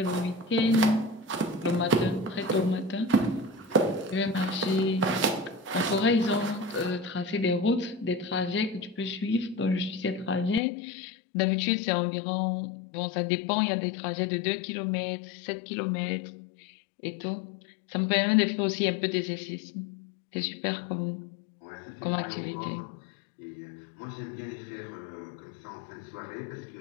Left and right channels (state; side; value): drops out; right; at 10.6 s